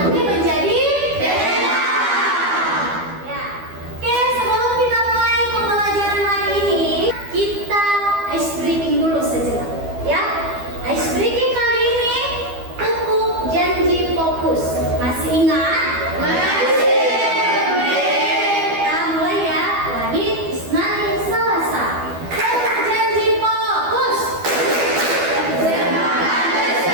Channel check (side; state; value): left; late; 12 ms